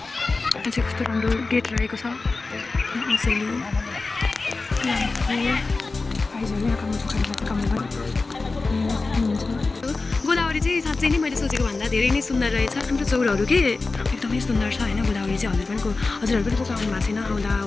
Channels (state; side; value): quieter; right; 3.7 dB